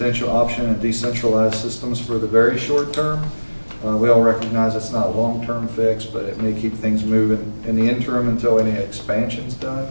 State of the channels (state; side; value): inverted; both; correlation -1.00